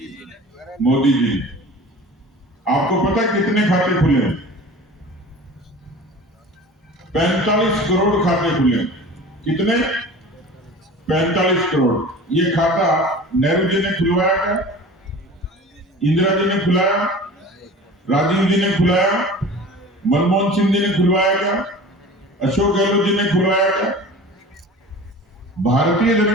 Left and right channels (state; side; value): normal; both; correlation 0.39